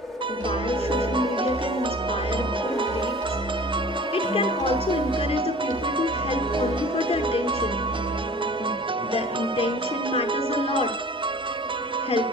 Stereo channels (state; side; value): normal; both; correlation 0.44